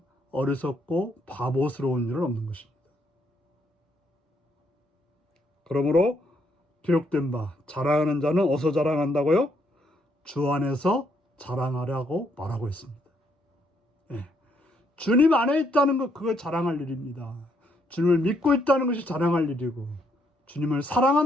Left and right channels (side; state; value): both; normal; correlation 0.73